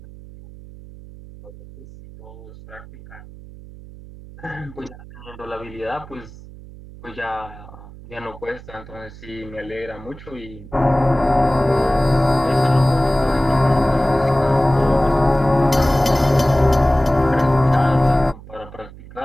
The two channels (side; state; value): right; noise; hum, 18 dB below the sound